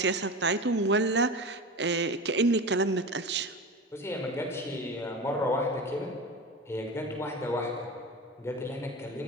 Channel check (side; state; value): both; normal; correlation 0.28